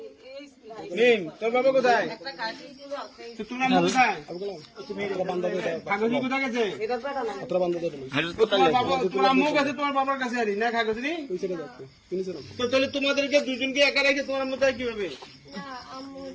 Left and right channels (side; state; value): both; identical; correlation 1.00